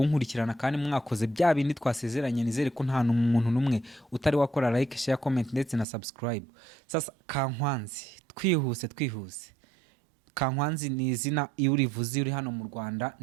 kandi mwakoze bya bindi twasezeranye. Nizere ko nta n'umuntu numwe utari wakora like, share, comment ndetse na subscribe. Sasa Kankwanzi, twihuse. Kankwanzi ni izina iyo urivuze uri hano mu Rwanda,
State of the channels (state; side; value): drops out; left; at 5.9 s